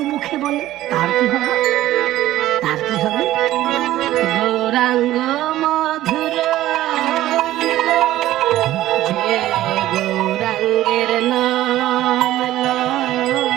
মুখে বলে তার কি হবে? তার কি হবে? গৌরাঙ্গ মধুর, যে গৌরাঙ্গের নাম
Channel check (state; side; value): quieter; left; 14.6 dB